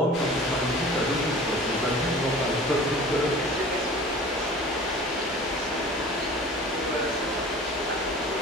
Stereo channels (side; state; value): both; normal; correlation 0.42